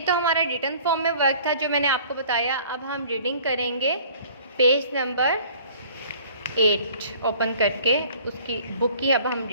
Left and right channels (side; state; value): both; inverted; correlation -0.51